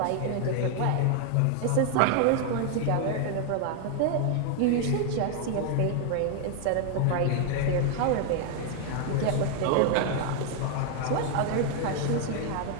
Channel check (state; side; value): different; both; correlation 0.00